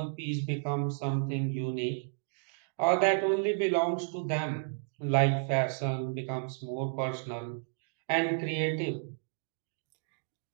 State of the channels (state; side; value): silent; left; digital silence